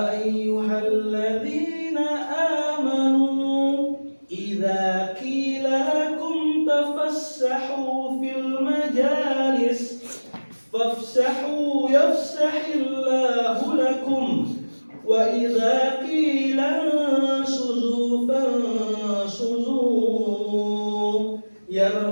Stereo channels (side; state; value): both; inverted; correlation -1.00